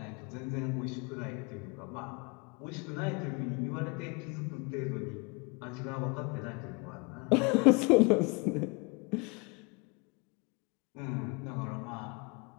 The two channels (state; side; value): quieter; right; 29.8 dB